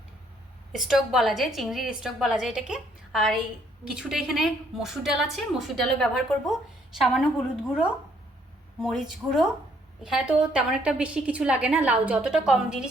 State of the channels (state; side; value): normal; both; correlation 0.67